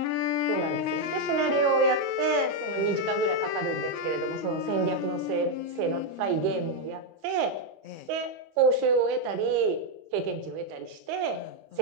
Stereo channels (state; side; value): late; left; 25 ms